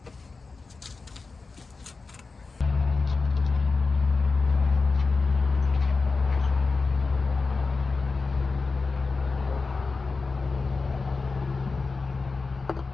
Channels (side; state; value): right; quieter; 4.2 dB